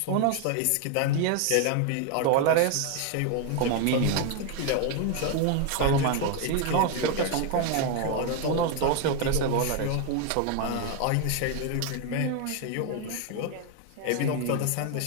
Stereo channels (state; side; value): different; both; correlation 0.01